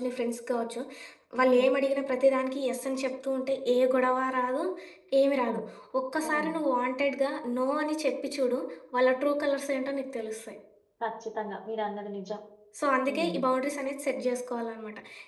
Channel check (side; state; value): both; identical; correlation 1.00